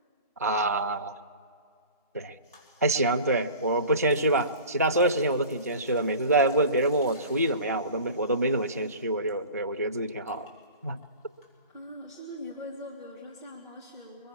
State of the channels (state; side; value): inverted; both; correlation -0.39